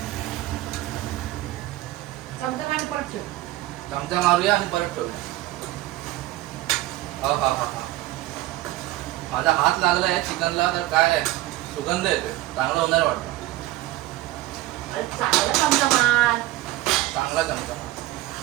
चमचा मारूया आणि परत ठेवूया. हा हा हा हा. माझा हात लागलाय चिकनला तर काय सुगंध येतोय. चांगलं होणार वाटतं. चांगला चमचा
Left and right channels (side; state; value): left; quieter; 16.6 dB